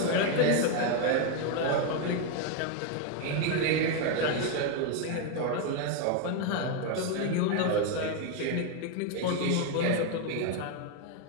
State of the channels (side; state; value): both; different; correlation 0.01